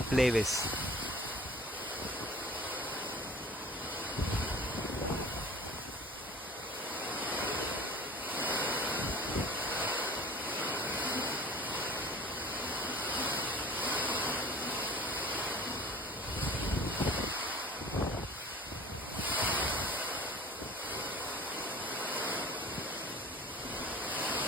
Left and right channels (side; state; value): both; normal; correlation 0.43